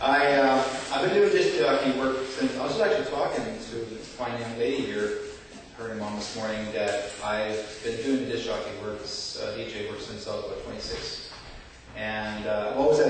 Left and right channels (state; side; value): identical; both; correlation 1.00